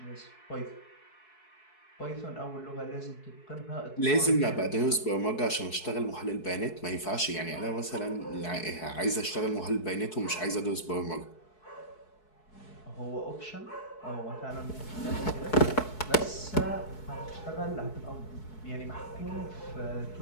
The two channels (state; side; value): late; right; 4.7 ms